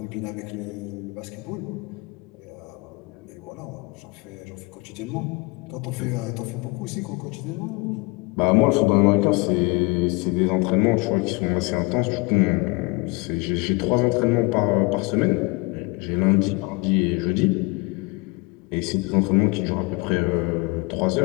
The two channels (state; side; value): quieter; right; 26.1 dB